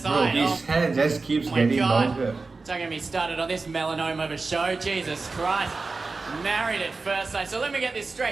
sight. Bro, his hair just keeps getting longer. Don't get me started on this melanoma of a show. Jesus Christ. Married at first sight. So let me get this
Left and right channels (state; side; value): quieter; left; 3.9 dB